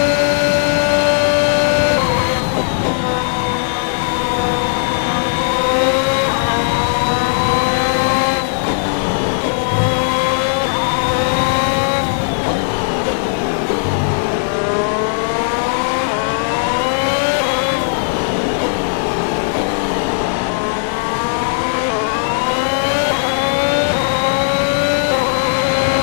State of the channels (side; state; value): right; silent; digital silence